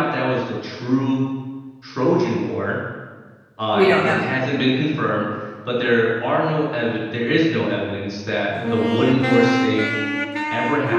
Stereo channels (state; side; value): identical; both; correlation 1.00